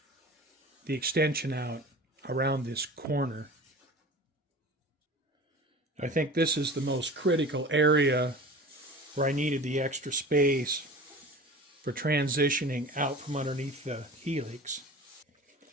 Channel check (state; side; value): normal; both; correlation 0.38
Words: the extension out around this corner. I think this is the most critical area where I needed the extra space for transitioning out from underneath the Helix.